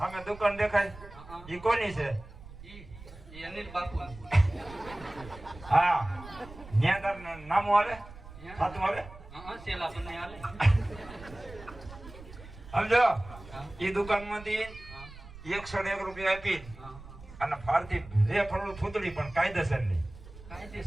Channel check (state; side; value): noise; right; rumble, 17 dB below the sound